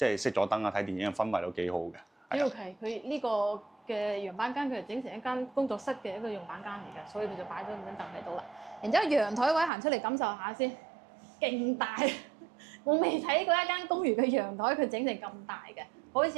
係熄咗燈啊睇電影嘅氛圍都幾好嘅。OK，佢呢個嘅樣板間佢係整成一間工作室嘅一個樣板間嚟嘅，所以佢就擺咗咁張凳喺度啦。然之後陽台位行出嚟感受下先，勁大！我未睇過一間公寓嘅陽台，佢整成咁大嘅，好似一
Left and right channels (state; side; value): drops out; left; at 9.7 s